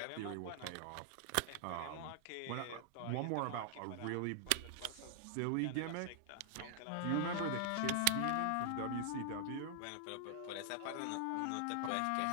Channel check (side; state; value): both; different; correlation 0.00